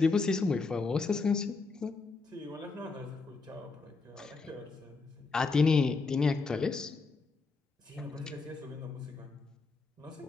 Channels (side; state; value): right; quieter; 4.2 dB